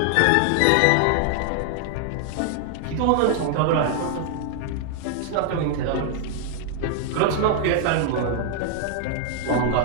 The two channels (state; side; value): different; both; correlation 0.00